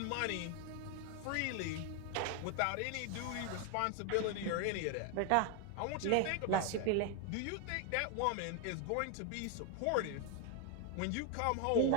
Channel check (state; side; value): different; both; correlation 0.01